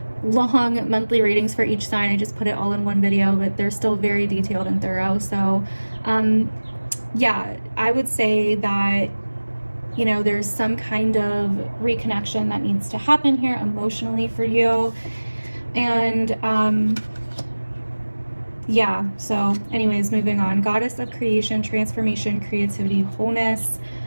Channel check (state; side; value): inverted; both; correlation -1.00